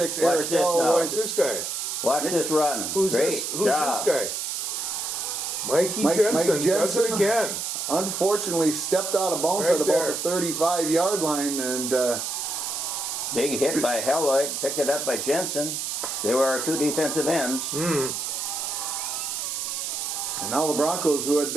Watch Eric this Hall. now. What's this guy? Watch this run. Who's Great this? Who's job. this guy? Mikey Jensen. Mike Does Jensen. it again. Unfortunately, stepped out of bounds Right at about there. the 35-yard line. And Big hit by Helloyd. Picked it up by Jensen. They were our 2 defensive ends. and now the Broncos, who had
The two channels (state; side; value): noise; right; hiss, 3 dB below the sound